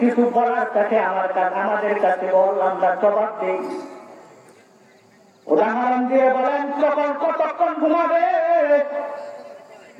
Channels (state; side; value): identical; both; correlation 1.00